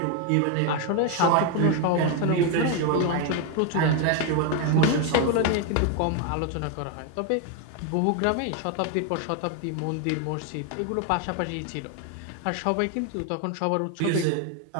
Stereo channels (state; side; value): different; both; correlation 0.01